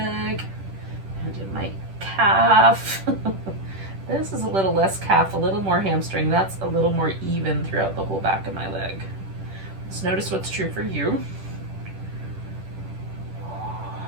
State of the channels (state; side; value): late; left; 10 ms